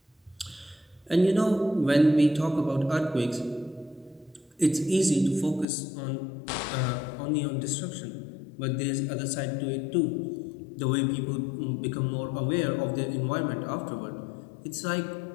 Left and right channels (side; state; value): right; drops out; at 5.7 s